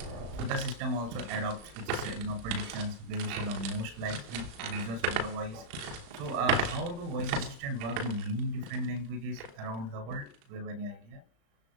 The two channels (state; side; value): late; left; 35 ms